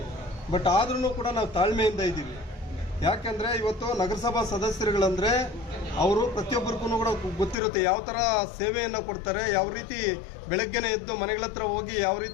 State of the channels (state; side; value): drops out; right; at 7.6 s